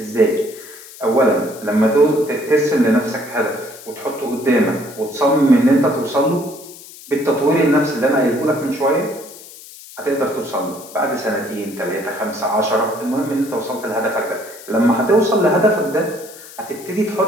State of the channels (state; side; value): noise; left; hiss, 18 dB below the sound